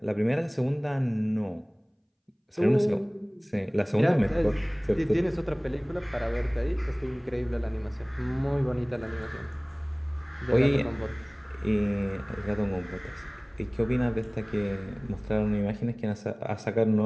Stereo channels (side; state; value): both; identical; correlation 1.00